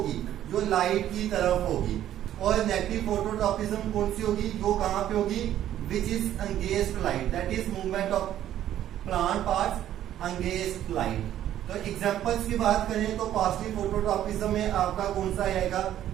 जो लाइट की तरफ होगी। और नेगेटिव फोटोट्रॉपिज्म कौन सी होगी, जो कहां पे होगी, which is against light, that is movement of plant parts against light. तो एग्जांपल्स की बात करें तो पॉजिटिव फोटोट्रॉपिज्म में आपका कौन सा आएगा,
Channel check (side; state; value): left; quieter; 11.8 dB